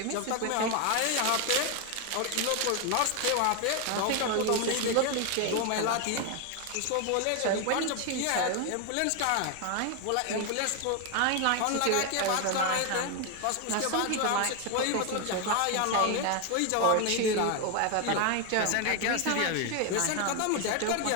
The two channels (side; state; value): both; different; correlation 0.01